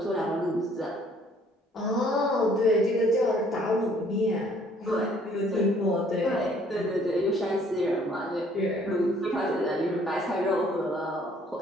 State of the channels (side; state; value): both; normal; correlation 0.60